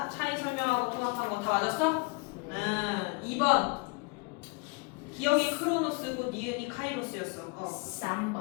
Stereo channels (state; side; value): quieter; right; 28.5 dB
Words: 차이 설명하고 통합한 거 다 맞았어? 2번 기억이 크로노스고 니은이 카이로스였어.